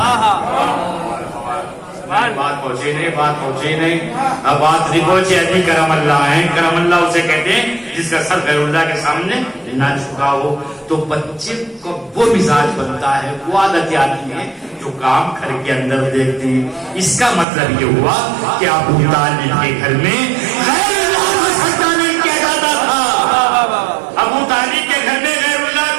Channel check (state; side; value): drops out; left; at 17.4 s